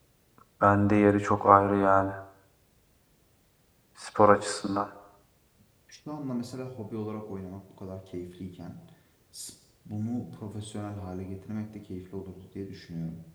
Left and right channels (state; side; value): identical; both; correlation 1.00